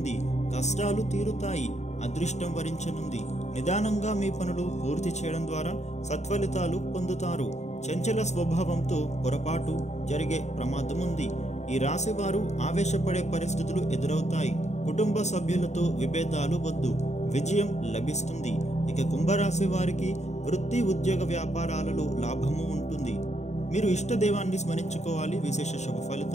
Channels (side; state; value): right; late; 0.33 ms